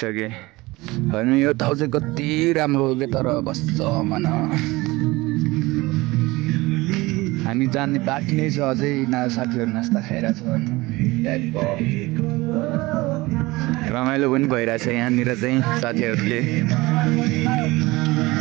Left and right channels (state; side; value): quieter; left; 21.2 dB